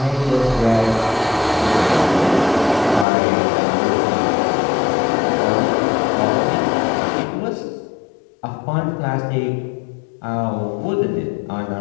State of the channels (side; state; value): right; drops out; at 3.1 s